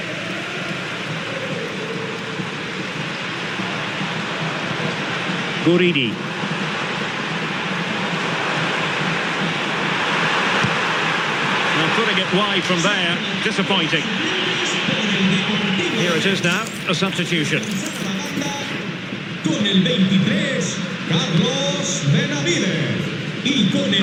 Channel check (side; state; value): both; identical; correlation 1.00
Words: Guridi. Now putting it wide from there, disappointing. Here it is now, a substitution. Con el 23, Carlos Benavides. Y con